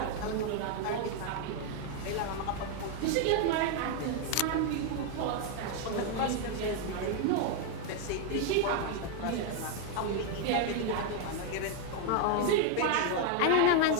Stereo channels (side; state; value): both; different; correlation 0.00